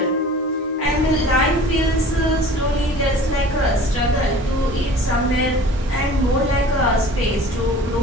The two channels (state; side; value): normal; both; correlation 0.44